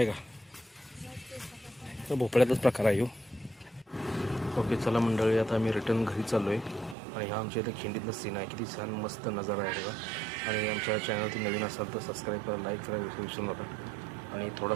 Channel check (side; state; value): left; drops out; at 7.0 s